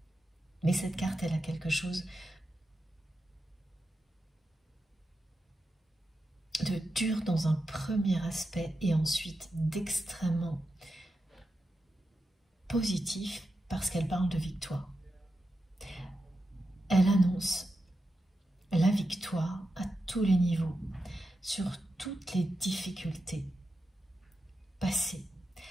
Mais cette carte, elle a quelque chose de dur dans un premier aspect et ensuite d'extrêmement positif parce qu'elle parle de victoire. Elle annonce la victoire à tous les niveaux, sur toutes les difficultés passées.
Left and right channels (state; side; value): normal; both; correlation 0.89